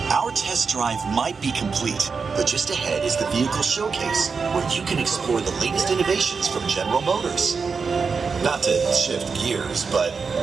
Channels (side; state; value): left; quieter; 5.2 dB